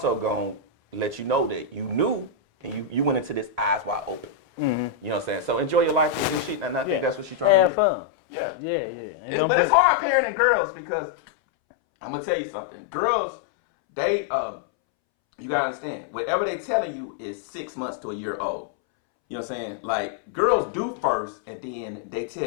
going to let you know that you knew and you went into this eyes wide open. Mm-hmm. You know what I'm saying? So enjoy your life with this shit. And I think that's what she's trying to do. Have fun. Yeah. Yeah. But it's hard parenting girls because I'm going to tell you something. Girls, you got to understand, whatever they telling you is 6 months to a year old. You know what I'm saying? Like, girls do first, and then they tell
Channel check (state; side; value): drops out; right; at 7.7 s